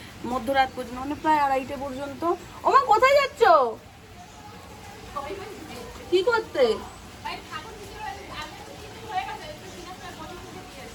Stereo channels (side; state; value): both; identical; correlation 1.00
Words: মধ্যরাত পর্যন্ত, মানে প্রায় 2:30 পর্যন্ত। ওমা, কোথায় যাচ্ছ? কি করতে?